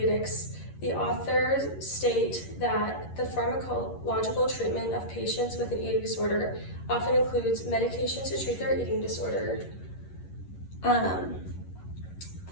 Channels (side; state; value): right; late; 11 ms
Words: the authors state that the pharmacological treatment of patients with an eating disorder often includes medications to treat their eating disorder,